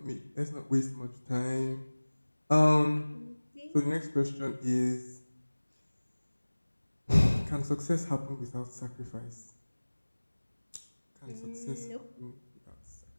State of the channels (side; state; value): both; inverted; correlation -1.00